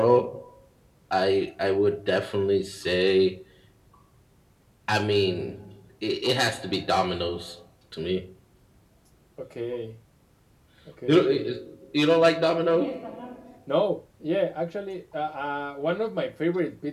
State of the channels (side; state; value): both; identical; correlation 1.00